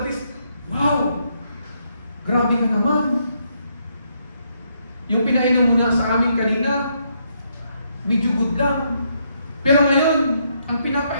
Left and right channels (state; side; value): inverted; both; correlation -0.75